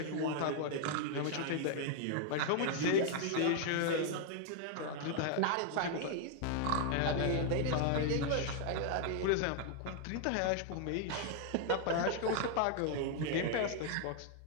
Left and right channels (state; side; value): different; both; correlation 0.00